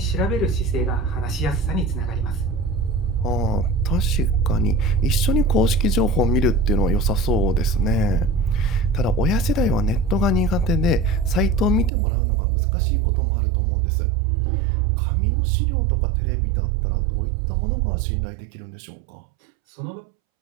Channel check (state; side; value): drops out; left; at 11.9 s